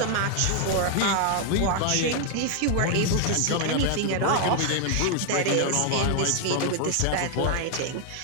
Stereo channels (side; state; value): both; different; correlation 0.00